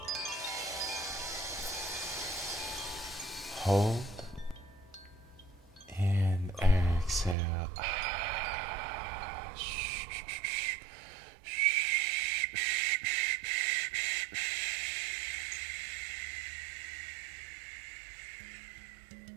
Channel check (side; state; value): left; drops out; at 7.4 s